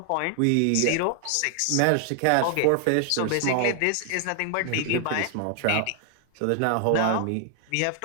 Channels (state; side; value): different; both; correlation 0.00